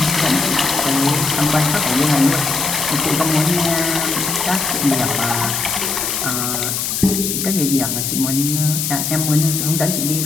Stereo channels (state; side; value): noise; left; hiss, 1 dB below the sound